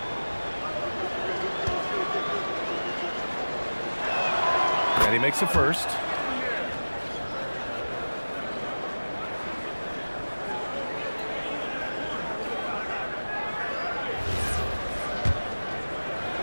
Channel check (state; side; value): inverted; both; correlation -1.00